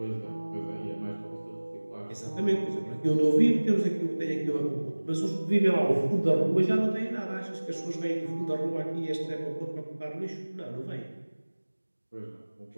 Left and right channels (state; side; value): inverted; both; correlation -1.00